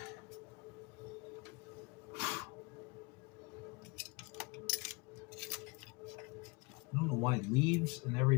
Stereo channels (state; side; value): quieter; right; 28.1 dB